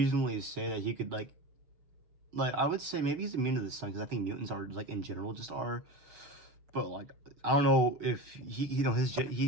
say that he could like I would say maybe he's immune to the sun because I think mutants are like in general just are. But like I don't know if he his jet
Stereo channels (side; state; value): left; late; 6.7 ms